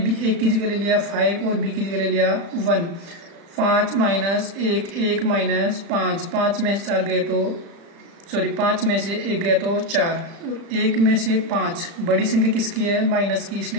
की जगह ले लिया 5 और b की जगह ले लिया 1। 5 - 1, 1 - 5, 5 में से 4 गए तो 5 में से 1 गया तो 4, और 1 में से 5 बड़ी संख्या किसकी है, माइनस की,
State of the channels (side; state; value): left; late; 36 ms